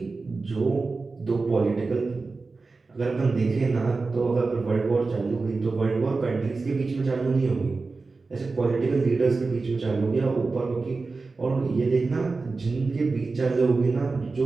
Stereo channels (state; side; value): quieter; left; 3.9 dB